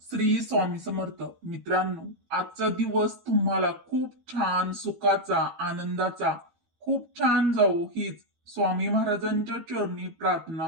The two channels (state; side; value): late; left; 12 ms